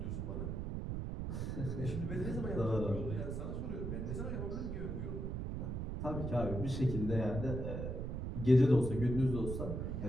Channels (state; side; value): noise; right; rumble, 3 dB below the sound